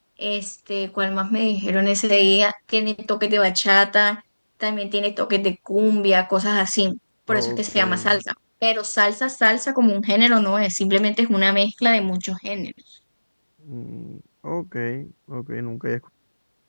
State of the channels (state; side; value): inverted; both; correlation -1.00